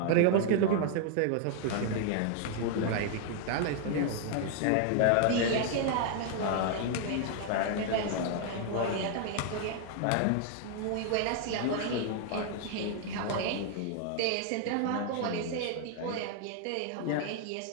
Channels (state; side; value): different; both; correlation 0.00